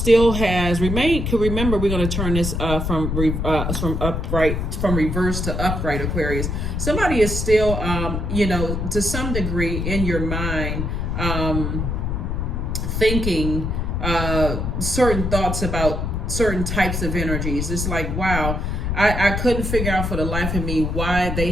has remained. Could remember, we're going to turn this from reverse to upright, Aquarius. Somebody is still, to some degree in your mind, thinking certain thoughts about certain types of energies. It's like, wow, I couldn't figure out for the life of me why they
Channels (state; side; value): noise; left; rumble, 2 dB below the sound